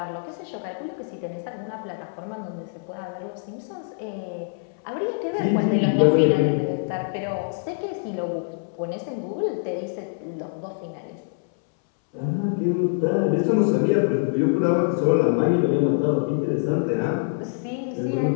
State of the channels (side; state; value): right; silent; 62 dB below the other